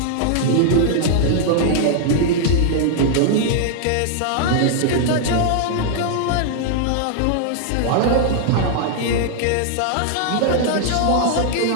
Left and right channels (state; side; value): different; both; correlation -0.01